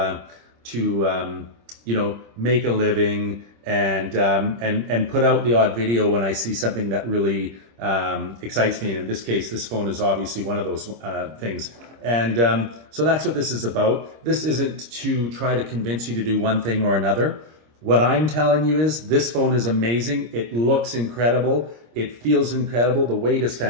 make a living and put out the odd video when I see something that really excites me. And in this case, this phone is obviously one of those things. And so that's what this is about. This isn't to try to convince you to do one thing or another. What I'm telling you is this phone is amazing. It looks incredible. It feels incredible. The weight is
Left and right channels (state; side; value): late; left; 26 ms